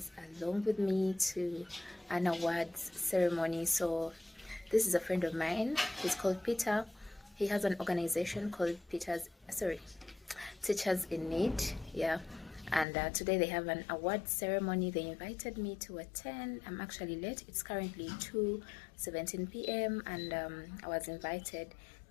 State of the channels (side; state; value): right; drops out; at 12.9 s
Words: along with me to an awards ceremony. So this is a friend of mine. He's called Peter. He has an organization called Teachers in Need. Yeah. And today they have an award ceremony. They invited me to attend. I'm actually late. It's currently 2:17 p.m. and I was invited